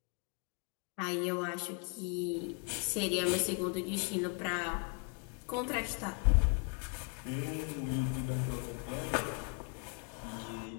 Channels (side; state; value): right; quieter; 36.8 dB